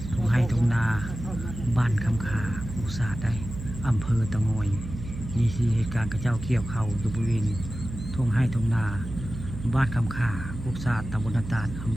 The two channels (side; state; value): right; noise; hum, 9 dB below the sound